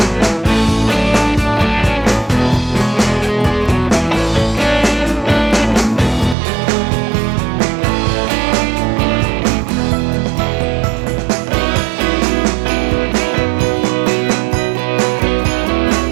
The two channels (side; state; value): left; drops out; at 6.4 s